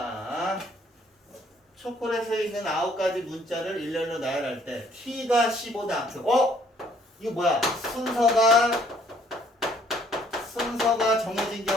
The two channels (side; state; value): both; normal; correlation 0.62